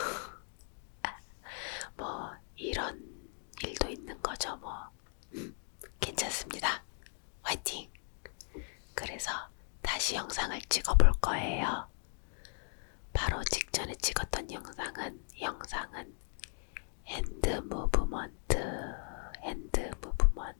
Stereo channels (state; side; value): silent; right; 53 dB below the other